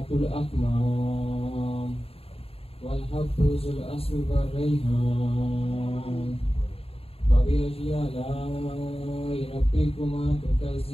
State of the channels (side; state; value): right; late; 0.28 ms